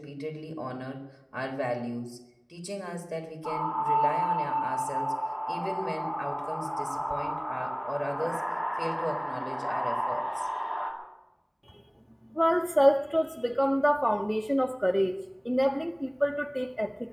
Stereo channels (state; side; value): identical; both; correlation 1.00